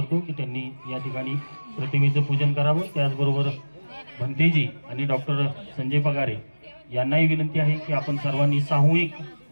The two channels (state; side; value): inverted; both; correlation -1.00